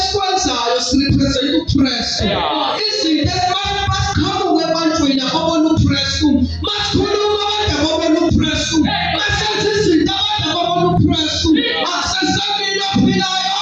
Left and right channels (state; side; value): identical; both; correlation 1.00